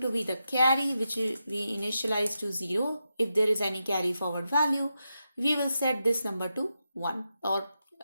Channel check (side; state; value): both; inverted; correlation -0.88